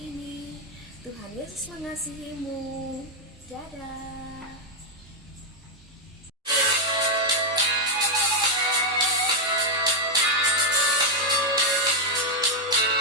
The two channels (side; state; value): both; normal; correlation 0.00